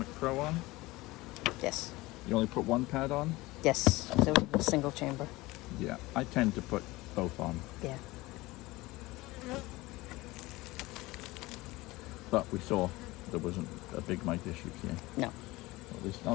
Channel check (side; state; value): right; quieter; 20.4 dB